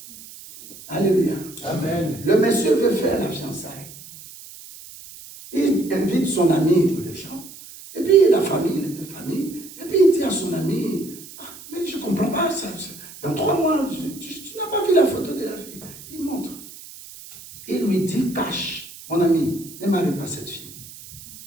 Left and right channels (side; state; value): right; noise; hiss, 17 dB below the sound